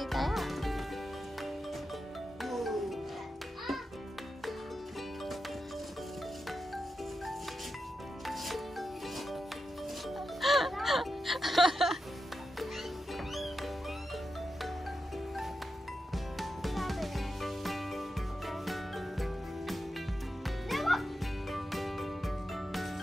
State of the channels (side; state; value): both; normal; correlation 0.88